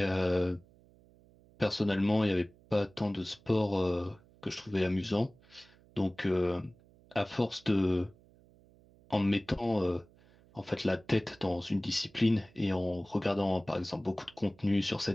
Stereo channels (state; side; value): noise; right; hum, 28 dB below the sound